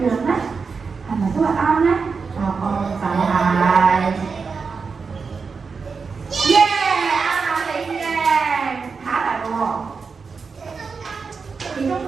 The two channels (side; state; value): left; quieter; 5.1 dB